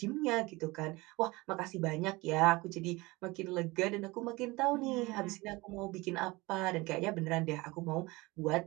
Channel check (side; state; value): left; quieter; 22.5 dB